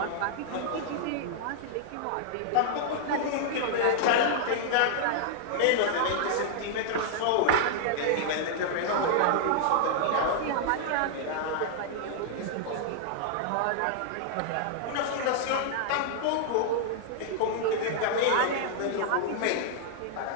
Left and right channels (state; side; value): different; both; correlation -0.01